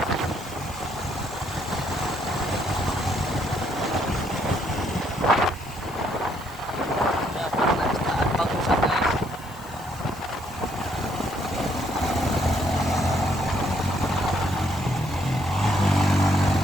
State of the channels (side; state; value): left; noise; hiss, 22 dB below the sound